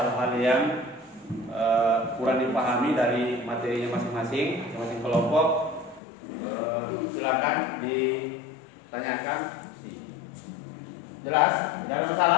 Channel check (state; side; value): drops out; right; at 6.0 s